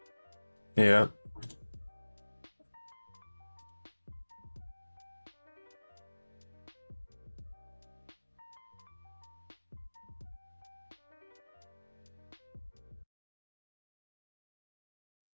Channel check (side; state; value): both; inverted; correlation -1.00